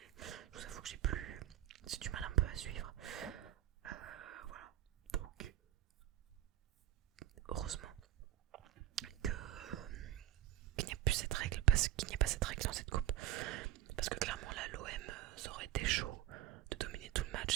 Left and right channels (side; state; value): left; quieter; 13.0 dB